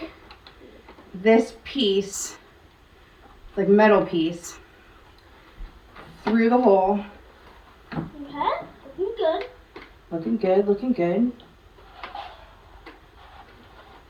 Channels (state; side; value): identical; both; correlation 1.00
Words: this piece, like metal piece, through the hole. Okay, looking good. Looking good, looking good.